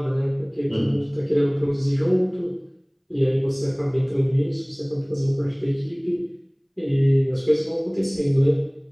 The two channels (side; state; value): both; identical; correlation 1.00